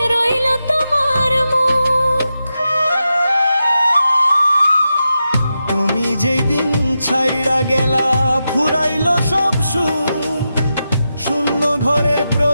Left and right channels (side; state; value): both; inverted; correlation -0.89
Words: রইল তোমার মুখ। তুমি যেই দিন ছাইরা গেলা ফুরাইলো সব সুখ, শূন্য ঘরের